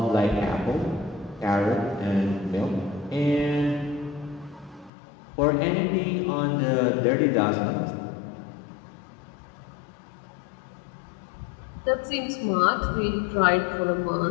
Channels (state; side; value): drops out; right; at 4.9 s